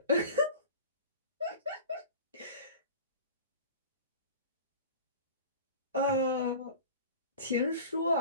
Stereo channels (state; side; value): inverted; both; correlation -0.39